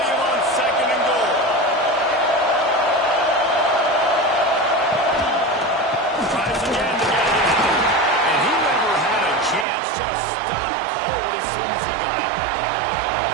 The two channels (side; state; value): left; drops out; at 9.7 s